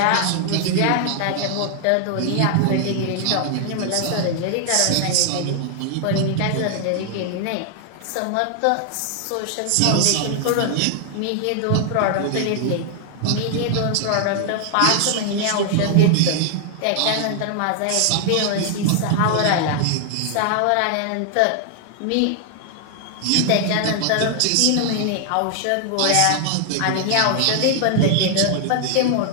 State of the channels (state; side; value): different; both; correlation 0.00